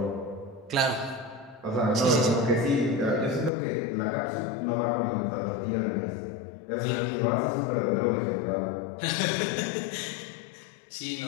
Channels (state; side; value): drops out; right; at 3.5 s